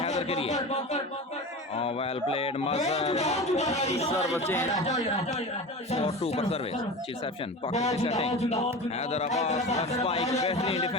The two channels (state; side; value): normal; both; correlation 0.30